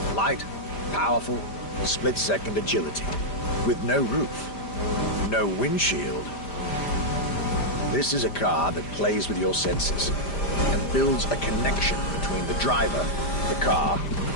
Light, powerful, split-second agility, with no roof, no windshield. This is a car that plays with your senses and builds a connection between the driver, the car,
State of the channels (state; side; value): late; right; 5.0 ms